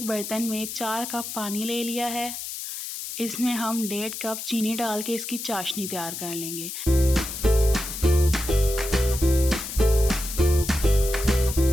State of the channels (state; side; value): noise; left; hiss, 7 dB below the sound